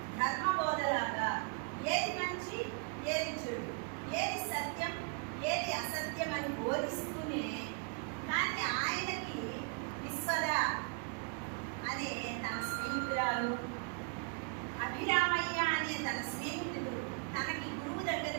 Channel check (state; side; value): quieter; left; 37.5 dB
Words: ధర్మబోధలాగా ఏది మంచి, ఏది చెడు, ఏది సత్యం, ఏది అసత్యం అని బోధిస్తూనే, కానీ ఆయనకి విశ్వద అనే తన స్నేహితురాలు, అభిరామయ్య అనే తన స్నేహితుడు, తనకి గురువు